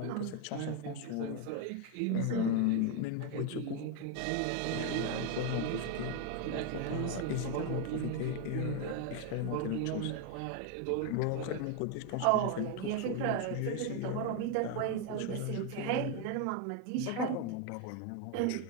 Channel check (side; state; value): both; different; correlation 0.01